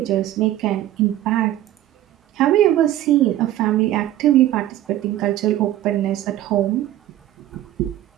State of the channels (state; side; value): quieter; left; 13.6 dB